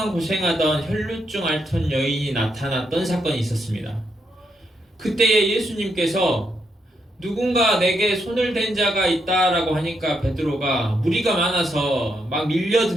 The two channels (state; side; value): normal; both; correlation 0.79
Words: 고생하던 혈루증 앓던 여인이 나타났던 사건이 있었습니다. 그때에 예수님께서 누군가 내게 손을 댄 자가 있다라고 하니까 베드로가 무리가 많아서 막